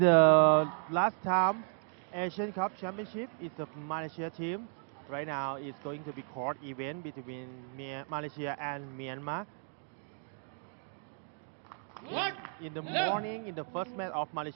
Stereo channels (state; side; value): silent; left; 55 dB below the other